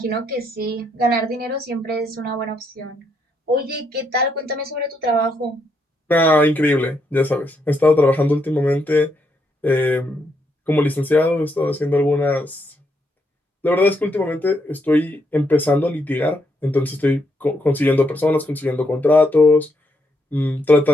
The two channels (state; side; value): normal; both; correlation 0.77